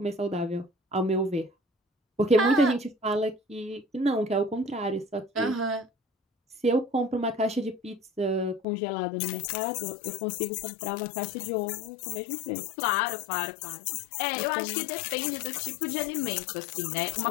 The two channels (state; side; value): drops out; right; at 8.7 s